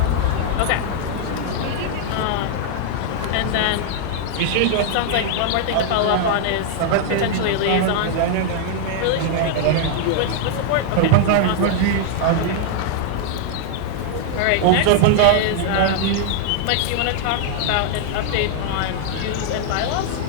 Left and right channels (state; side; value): different; both; correlation -0.01